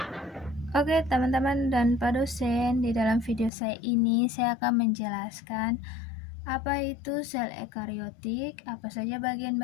Oke teman-teman dan Pak dosen, di dalam video saya ini saya akan menjelaskan apa itu sel ekariotik, apa saja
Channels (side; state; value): right; drops out; at 3.5 s